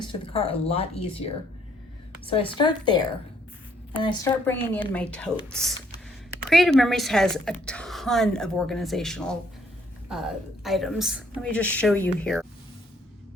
to the car a lot easier. So I start there, and I start bringing in my totes. Creative Memories has a ton of organizational items. Let me just show you here.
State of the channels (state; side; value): normal; both; correlation 0.67